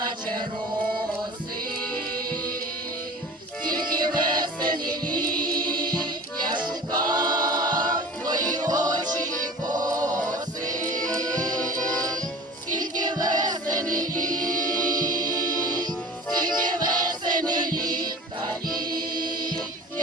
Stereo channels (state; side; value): normal; both; correlation 0.39